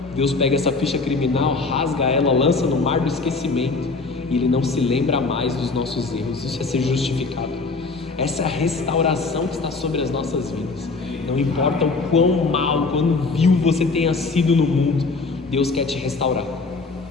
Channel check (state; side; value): quieter; right; 3.9 dB